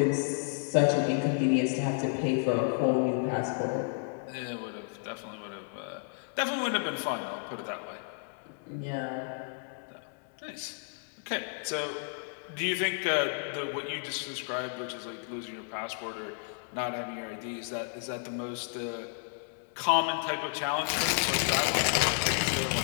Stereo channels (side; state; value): right; silent; 57 dB below the other